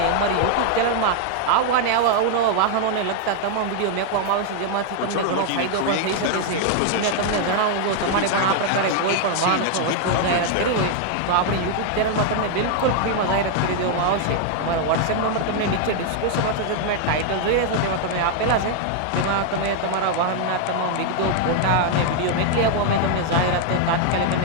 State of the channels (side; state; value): both; different; correlation 0.00